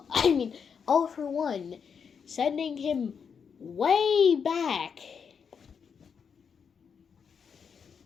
I mean, all for one, sending him way back.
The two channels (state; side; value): quieter; right; 6.5 dB